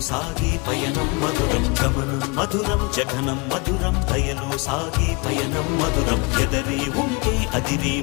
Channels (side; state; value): right; quieter; 28.7 dB